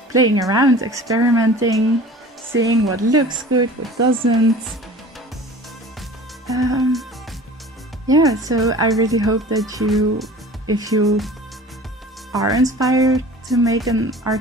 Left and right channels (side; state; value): both; normal; correlation 0.42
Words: playing around, experimenting, seeing what looks good, what doesn't. Yeah, so I really hope that if you are inspired to make an art